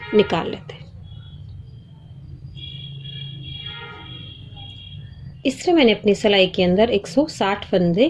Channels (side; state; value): both; identical; correlation 1.00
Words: निकाल लेते हैं। इस तरह मैंने अपनी सिलाई के अंदर 160 फंदे